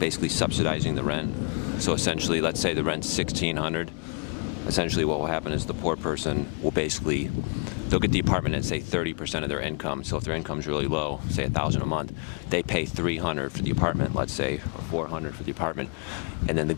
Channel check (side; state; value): right; quieter; 39.7 dB